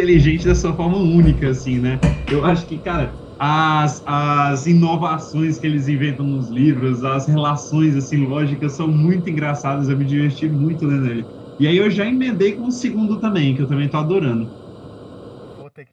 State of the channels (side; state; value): both; identical; correlation 1.00